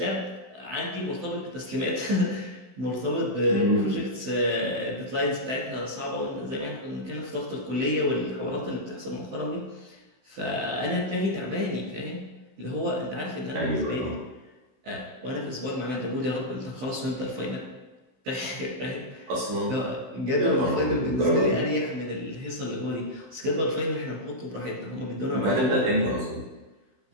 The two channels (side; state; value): left; late; 16 ms